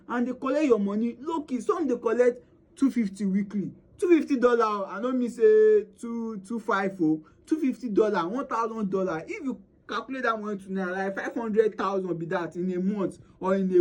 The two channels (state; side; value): identical; both; correlation 1.00